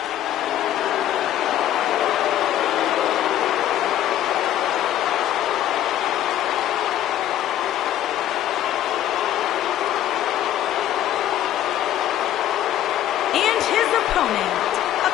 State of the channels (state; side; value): quieter; right; 12.0 dB